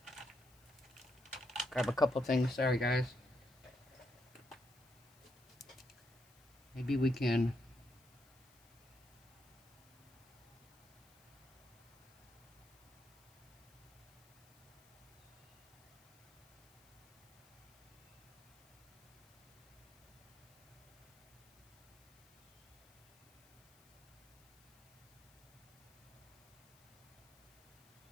Grab a couple things, sorry guys. Maybe we can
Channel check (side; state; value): left; noise; hiss, 27 dB below the sound